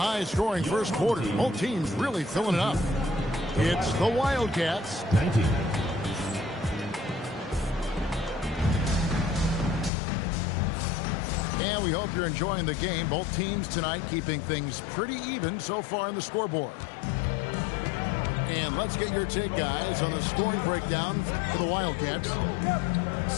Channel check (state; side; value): drops out; right; at 9.9 s